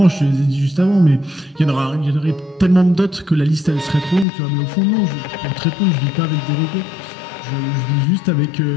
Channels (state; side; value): drops out; right; at 4.2 s